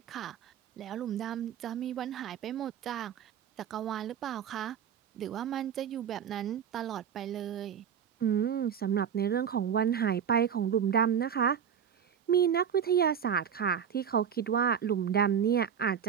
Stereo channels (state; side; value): quieter; left; 8.1 dB